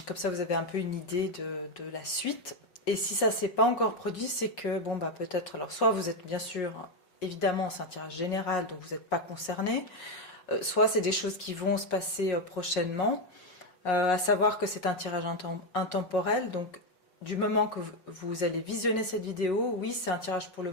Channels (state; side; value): late; right; 5.5 ms